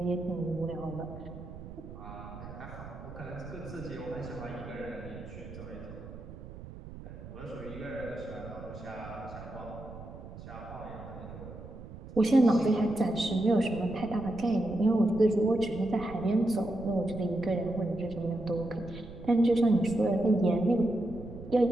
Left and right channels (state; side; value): noise; right; rumble, 14 dB below the sound